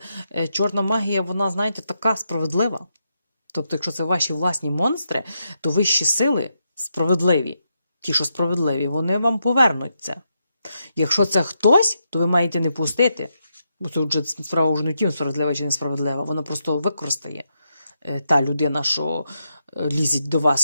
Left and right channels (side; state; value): both; inverted; correlation -0.83